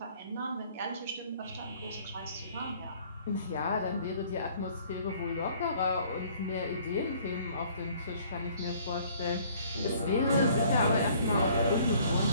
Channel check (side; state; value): both; inverted; correlation -0.57